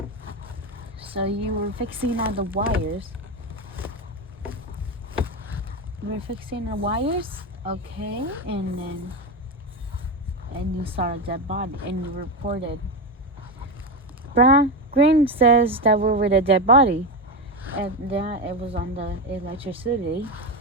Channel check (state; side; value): normal; both; correlation 0.15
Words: So you were fixing all the wires. Okay, and you saw a dead body, and you reported. Green says that we were the dead body, and that it was on the electricity.